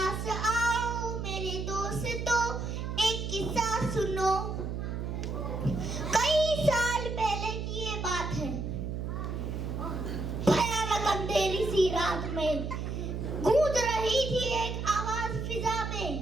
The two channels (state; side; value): noise; right; hum, 4 dB below the sound